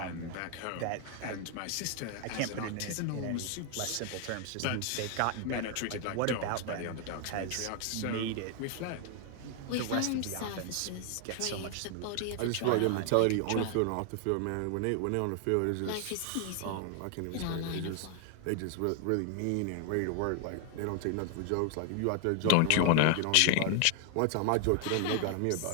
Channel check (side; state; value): both; different; correlation 0.00